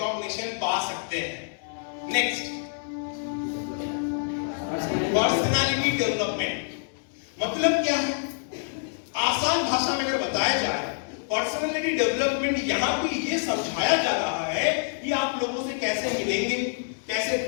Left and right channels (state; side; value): silent; right; digital silence